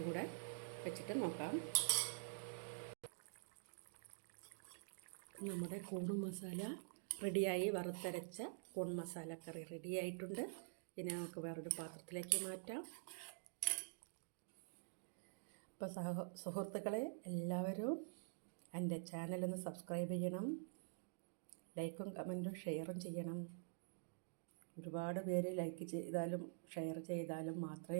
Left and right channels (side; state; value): left; silent; digital silence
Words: കൂടെ വെച്ചിട്ട് നോക്കാം. നമ്മുടെ കൂൺ മസാല റെഡിയായി. വറുത്തരച്ച കൂൺ മസാല കറി റെഡിയായിട്ടുണ്ട്. പിന്നെ നമുക്ക് വേറൊരു പാത്രത്തിലേക്ക് മാറ്റാം. ഇപ്പോൾ സുഹൃത്തുക്കളെ, എല്ലാവരും എൻ്റെ ചാനലൊന്ന് സബ്സ്ക്രൈബ് ചെയ്യണം. ലൈക്കും കമൻറ്റും ഷെയറും ചെയ്യണം. ഒരുപാട് പേര് ലൈക്ക് ചെയ്താലും ഷെയർ ചെയ്താലും മാത്രമേ